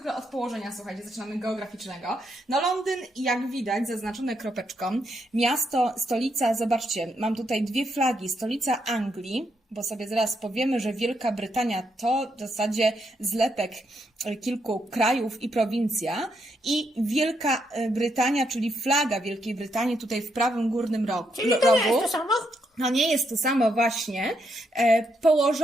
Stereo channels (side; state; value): both; normal; correlation 0.78